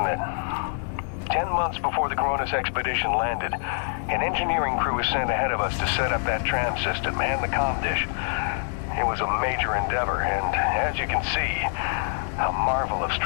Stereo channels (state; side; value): silent; right; 61 dB below the other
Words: it? 10 months before the Cronus expedition landed, an engineering crew was sent ahead of us to set up that tram system and the comm dish. It was a major endeavor, and as you can see, a marvel of